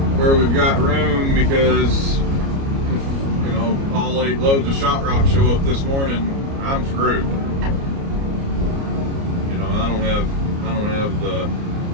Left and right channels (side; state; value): left; late; 29 ms